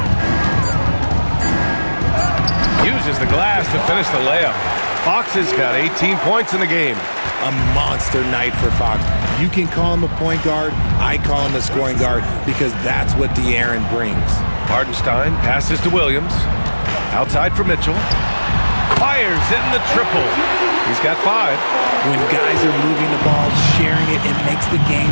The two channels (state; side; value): inverted; both; correlation -1.00